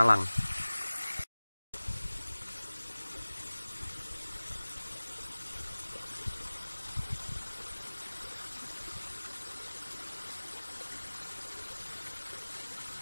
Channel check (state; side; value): inverted; both; correlation -1.00